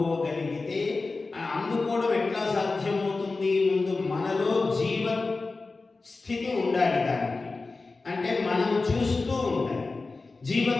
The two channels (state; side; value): quieter; right; 3.7 dB